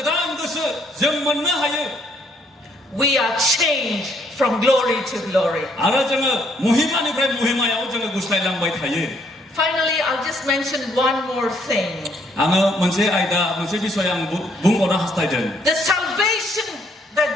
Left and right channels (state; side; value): normal; both; correlation 0.68